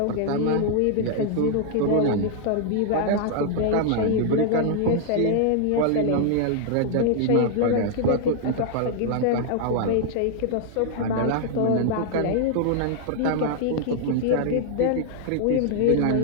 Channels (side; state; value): both; different; correlation 0.00